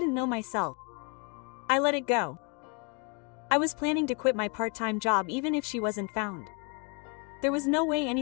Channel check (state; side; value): quieter; right; 34.5 dB